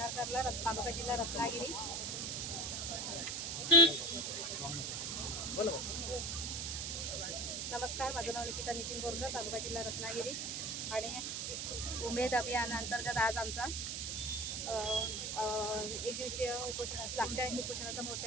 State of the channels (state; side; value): noise; right; hiss, 2 dB below the sound